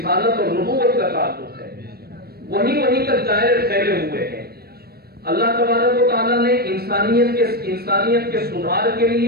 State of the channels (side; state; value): left; late; 0.45 ms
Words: اور نبوت کا تعلق ہے. وہیں تک دائرے پھیلے ہوئے ہیں. اللہ تبارک و تعالیٰ نے انسانیت کے سدھار کے